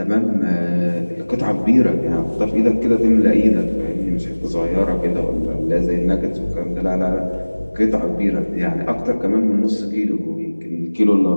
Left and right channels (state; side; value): inverted; both; correlation -1.00